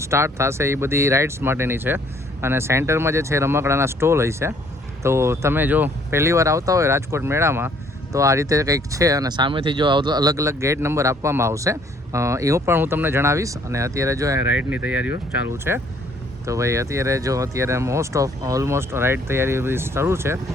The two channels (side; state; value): both; normal; correlation 0.62